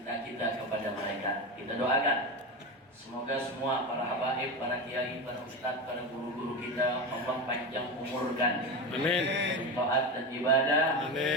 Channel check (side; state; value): both; normal; correlation 0.21